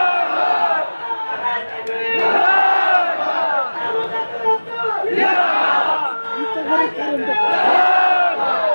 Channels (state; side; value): inverted; both; correlation -1.00